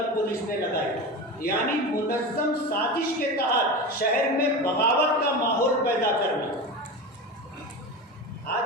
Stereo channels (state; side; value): normal; both; correlation 0.25